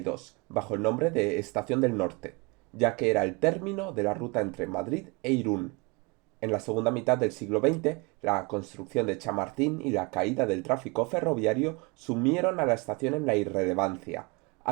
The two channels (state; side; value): quieter; left; 27.7 dB